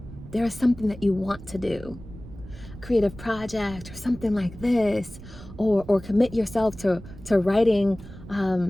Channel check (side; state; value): right; noise; rumble, 16 dB below the sound